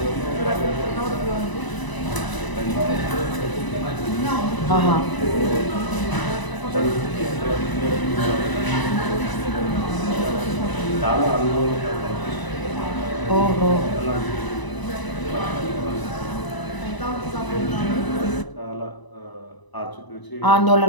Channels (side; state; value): right; late; 1.0 ms